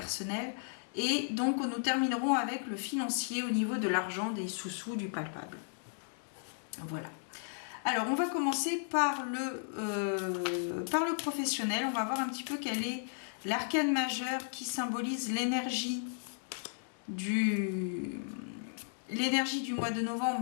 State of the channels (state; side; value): silent; right; digital silence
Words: Et donc nous terminerons avec le financier au niveau de l'argent, des sous-sous, du palpable. Voilà. Alors, on va commencer par le professionnel. On va voir un petit peu quel est l'arcane majeur qui symbolise l'énergie du mois de